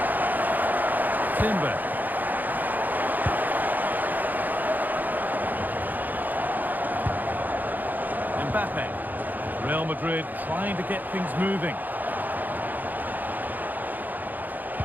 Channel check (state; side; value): late; left; 0.085 ms